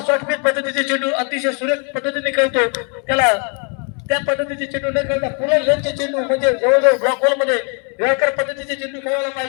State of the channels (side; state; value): right; quieter; 38.4 dB